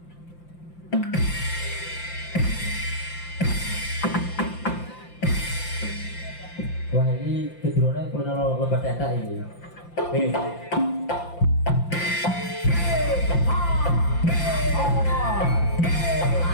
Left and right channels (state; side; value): late; right; 5.8 ms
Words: Wah, ini kedurunnya perlu lebat data ini.